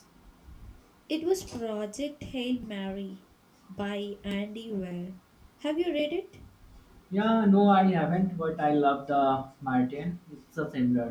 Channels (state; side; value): identical; both; correlation 1.00